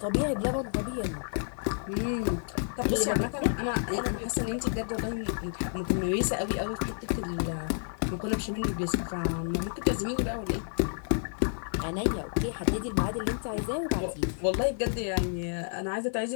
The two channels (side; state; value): right; silent; digital silence